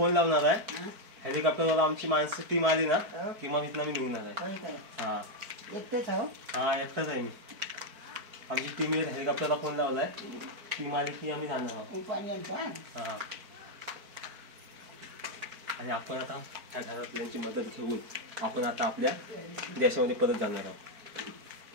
लावणार आहे. हेलिकॉप्टरला आमची माणसं टीम आली ना की मग इथनं मी निघणार आहे. हा एकटेच आहो. हा एकटाच आहे मी. आमची टीम हेलिकॉप्टरला फोन लावलाय. टीम आली की आम्ही जाणार आहोत. पाणी आणतो. हा आणि आपण आता त्या घरातल्यांची मदत घेऊन आपण आता आपल्या देशामध्ये परत जाणार आहोत.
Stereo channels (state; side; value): late; left; 4.5 ms